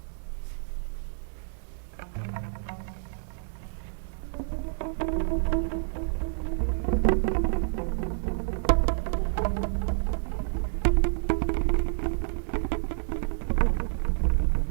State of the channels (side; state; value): left; silent; digital silence